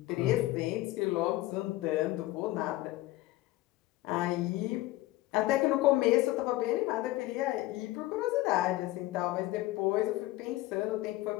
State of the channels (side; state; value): right; quieter; 17.4 dB